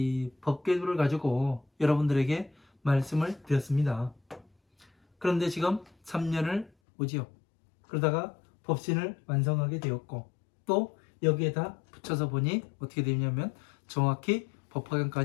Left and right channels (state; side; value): drops out; right; at 6.7 s